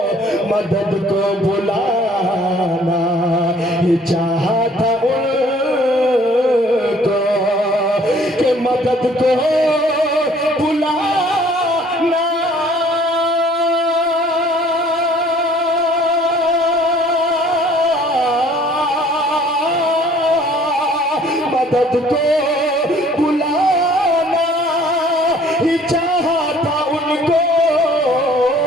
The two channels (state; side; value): normal; both; correlation 0.56